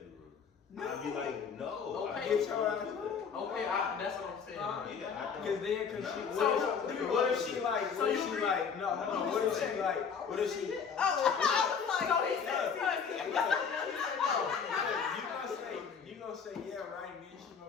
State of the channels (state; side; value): quieter; right; 6.3 dB